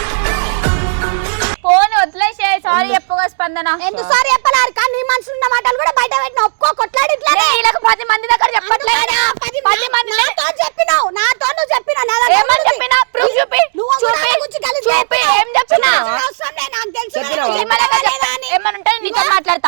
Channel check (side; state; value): left; silent; digital silence